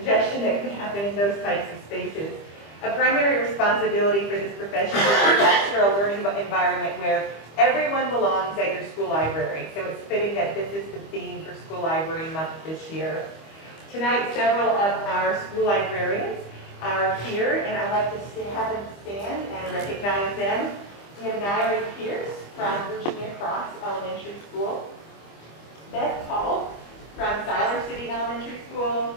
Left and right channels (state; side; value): late; right; 25 ms